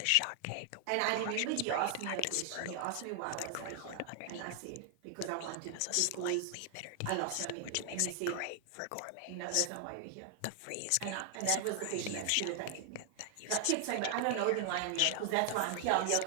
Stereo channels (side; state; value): both; different; correlation 0.00